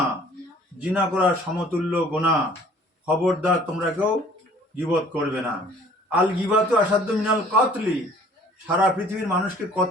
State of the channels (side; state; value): both; normal; correlation 0.53